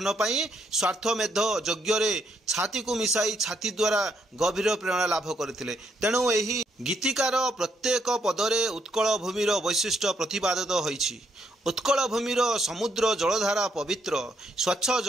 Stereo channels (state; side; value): normal; both; correlation 0.74